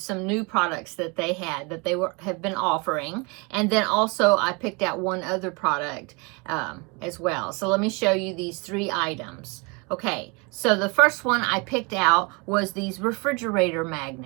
new products that they had that they have been offering, and then also I picked out one other product as well. So let me show you these 3 items. Okay, so the first one I picked out was these refrigerator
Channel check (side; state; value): left; quieter; 29.8 dB